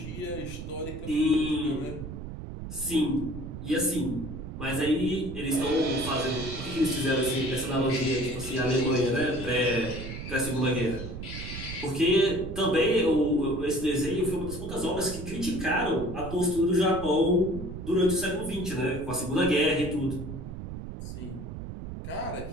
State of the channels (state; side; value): noise; right; rumble, 9 dB below the sound